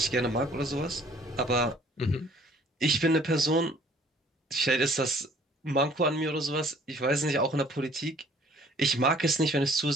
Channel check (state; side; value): normal; both; correlation 0.56